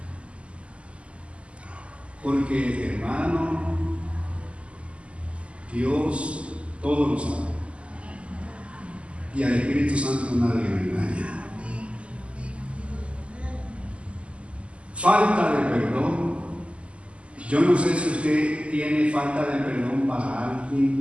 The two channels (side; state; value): left; late; 0.057 ms